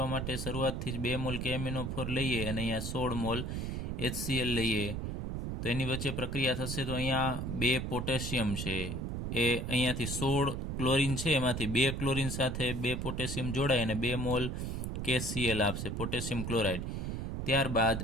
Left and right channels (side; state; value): right; noise; rumble, 3 dB below the sound